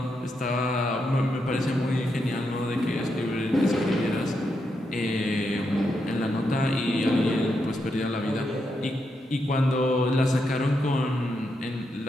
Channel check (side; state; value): both; normal; correlation 0.83